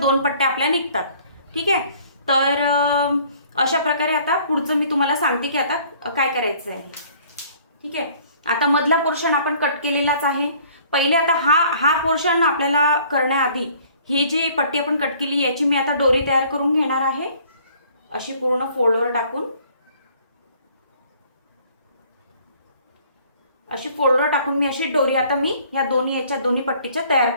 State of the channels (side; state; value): both; inverted; correlation -0.56